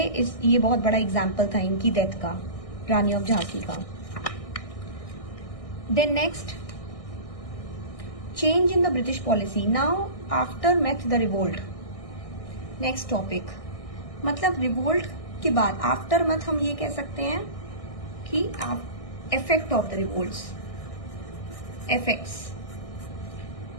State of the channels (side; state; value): right; late; 1.6 ms